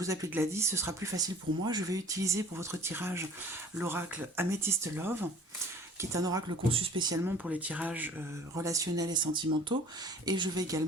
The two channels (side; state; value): both; normal; correlation 0.48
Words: vous appeler Gladys, ce sera plus facile pour moi. Je vais utiliser pour votre tirage l'oracle Amethyst Love, qui est un oracle conçu spécialement pour les tirages relationnels et sentimentaux. Et je vais